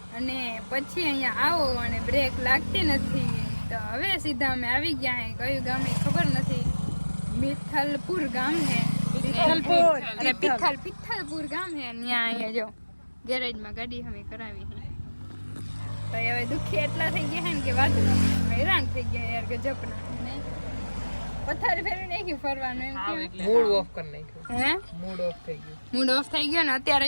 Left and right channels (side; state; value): both; inverted; correlation -1.00